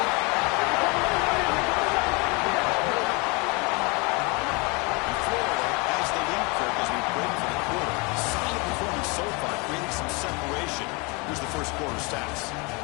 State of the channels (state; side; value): quieter; right; 29.1 dB